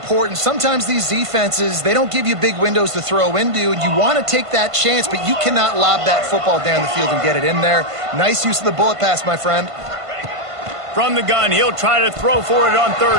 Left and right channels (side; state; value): left; late; 1.5 ms